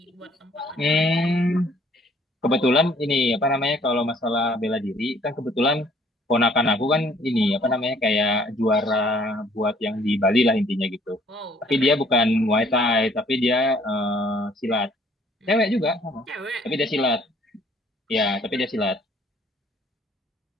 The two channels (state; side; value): normal; both; correlation 0.60